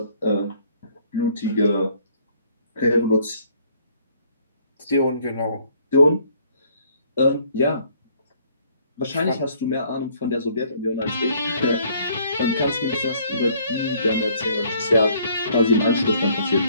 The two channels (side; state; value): both; inverted; correlation -0.61